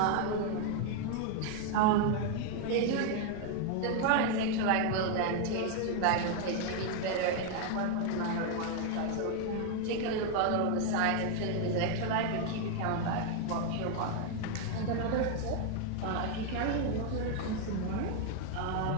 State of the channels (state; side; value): different; both; correlation 0.01